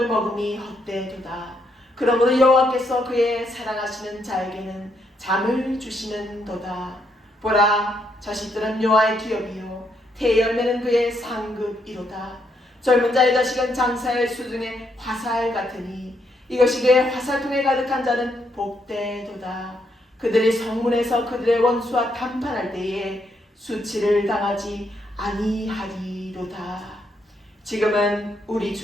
먹음이 헛되도다. 그러므로 여호와께서 그의 사랑하시는 자에게는 잠을 주시는도다. 보라, 자식들은 여호와의 기업이요 태열매는 그의 상급이로다. 젊은 자의 자식은 장사의 수중에 화살 같으니 이것이 그의 화살통에 가득한 자는 복되도다. 그들이 성문에서 그들의 원수와 담판할 때에 수치를 당하지 아니하리로다. 지금은 우리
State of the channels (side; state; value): both; normal; correlation 0.76